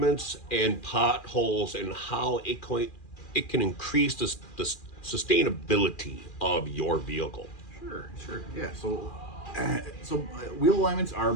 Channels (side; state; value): right; late; 2.4 ms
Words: and potholes and how it can increase the sustainability of your vehicle. Sure. Yeah. Wheel alignments are